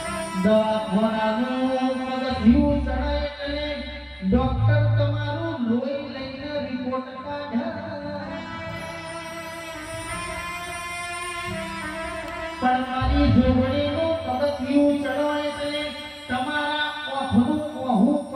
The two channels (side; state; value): both; identical; correlation 1.00